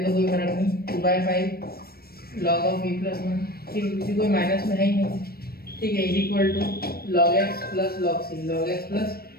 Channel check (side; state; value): right; late; 0.44 ms